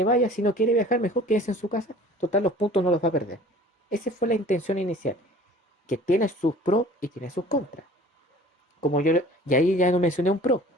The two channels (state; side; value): normal; both; correlation 0.47